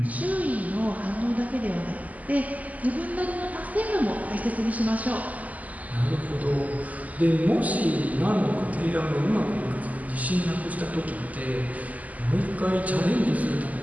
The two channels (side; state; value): left; late; 0.076 ms